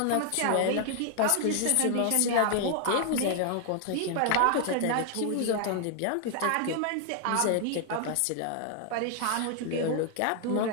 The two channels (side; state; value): both; different; correlation 0.00